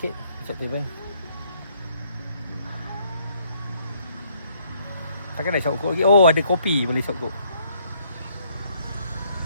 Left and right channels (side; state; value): both; inverted; correlation -0.67